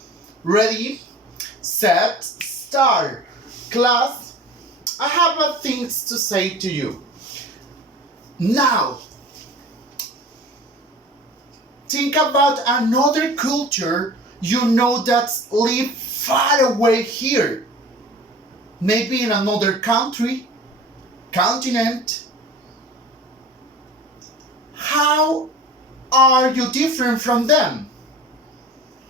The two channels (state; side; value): normal; both; correlation 0.41